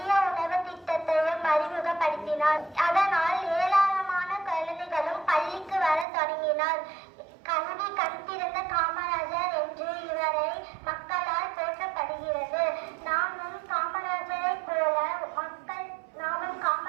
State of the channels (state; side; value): drops out; left; at 6.1 s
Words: உணவு திட்டத்தையும் அறிமுகப்படுத்தினார். அதனால் ஏராளமான குழந்தைகளும் பள்ளிக்கு வர தொடங்கினார். கல்வி கண் திறந்த காமராஜர் என்று இவரை மக்களால் போற்றப்படுகிறது. நாமும் காமராஜரை